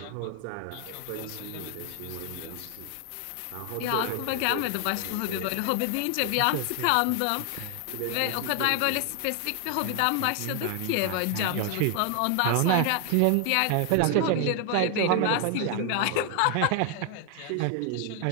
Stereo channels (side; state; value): both; different; correlation 0.00